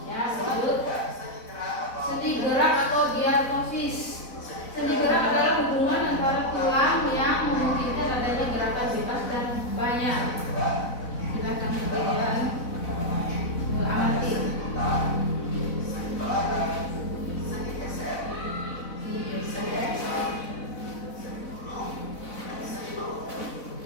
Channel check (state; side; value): late; right; 4.0 ms